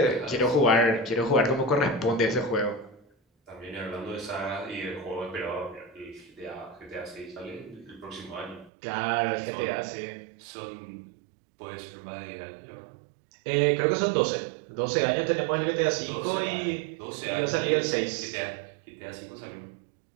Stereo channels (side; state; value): left; drops out; at 8.7 s